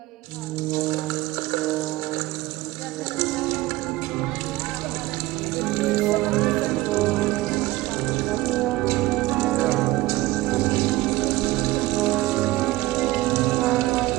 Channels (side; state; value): left; quieter; 18.3 dB